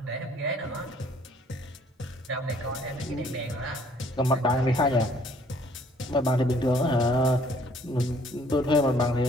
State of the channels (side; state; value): both; normal; correlation 0.60